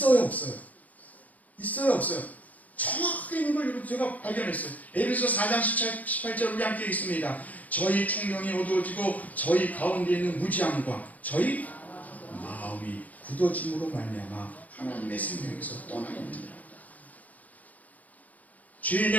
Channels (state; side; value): late; right; 0.074 ms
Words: 없어요? 있어요 없어요? 정확하게 있는 걸 제가 발견했어요. 에베소 4장 18절 우리 함께 있습니다. 저희 총명이 어두워지고 저희 가운데 있는 무지함과 저희 마음이 굳어짐으로 말미암아 하나님의 생명에서 떠나 있느니라.